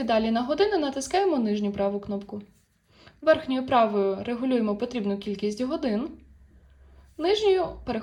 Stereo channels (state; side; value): identical; both; correlation 1.00